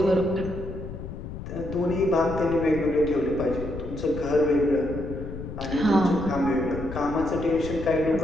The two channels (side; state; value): left; noise; rumble, 9 dB below the sound